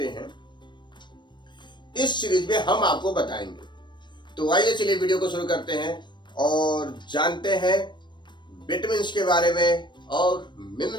हैं, इस सीरीज में हम आपको बताएंगे। तो आइए चलिए वीडियो को शुरू करते हैं और जानते हैं विटामिन्स के बारे में और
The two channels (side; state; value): right; late; 0.22 ms